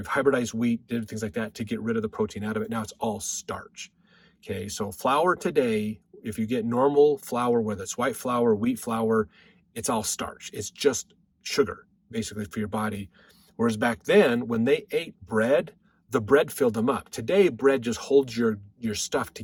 hybridized wheat, did things like that to get rid of the protein out of it. Now it's all starch. Okay, so flour today, if you get normal flour, whether it's white flour, wheat flour, it's all starch. It's just sugar, basically, for your body. Whereas back then, when they ate bread, the bread filled them up. Today, bread just holds your stuff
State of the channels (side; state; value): both; identical; correlation 1.00